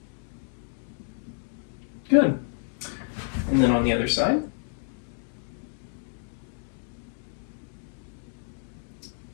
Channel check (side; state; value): right; silent; digital silence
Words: Good. And then on the other side.